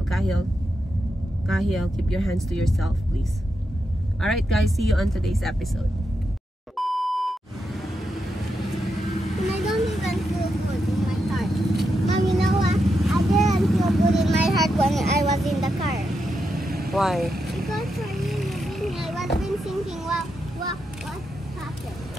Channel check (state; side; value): normal; both; correlation 0.85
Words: Kahil, keep your hands to yourself please. Alright guys, see you on today's episode. I don't even feel good in my heart. Mom, you know what? I didn't feel good in my heart when I was in the car. Why? Because for you, I was been thinking, what happened?